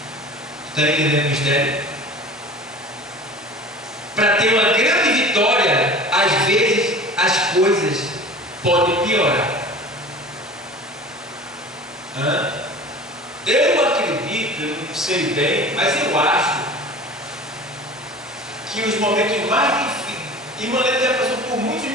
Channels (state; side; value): normal; both; correlation 0.39